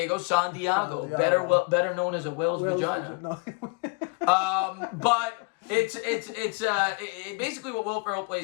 better known as a whale's vagina. But it's basically what Will Ferrell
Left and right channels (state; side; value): quieter; right; 32.3 dB